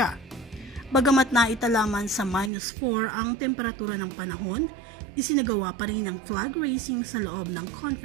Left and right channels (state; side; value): drops out; left; at 2.5 s